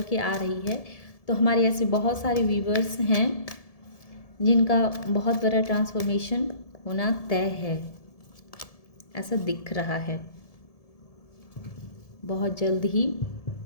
के आ रही है। तो हमारे ऐसे बहुत सारे व्यूवर्स हैं जिनका बहुत बड़ा ट्रांसफॉर्मेशन होना तय है, ऐसा दिख रहा है। बहुत जल्द ही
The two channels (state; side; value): late; right; 1.7 ms